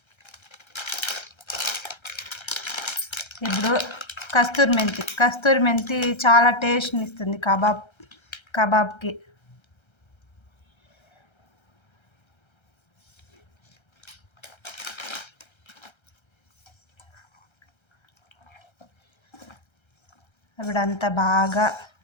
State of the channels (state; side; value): late; right; 1.3 ms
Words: ఇప్పుడు కస్తూరి మెంతి చాలా టేస్ట్ని ఇస్తుంది కబాబ్కి. ఇప్పుడంతా బాగా